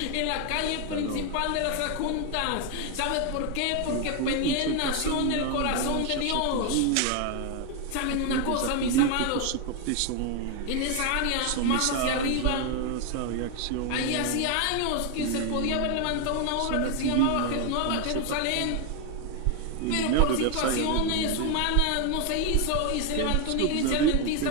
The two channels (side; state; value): both; different; correlation 0.01